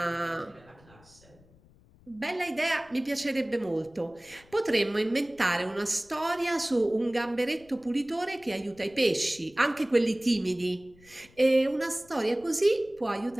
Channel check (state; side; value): noise; left; rumble, 27 dB below the sound